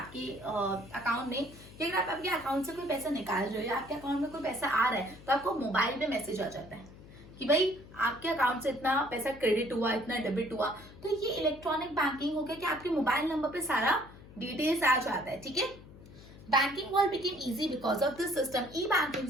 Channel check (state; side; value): noise; left; hum, 19 dB below the sound